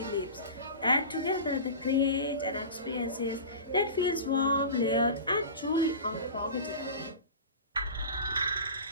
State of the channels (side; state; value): both; inverted; correlation -0.33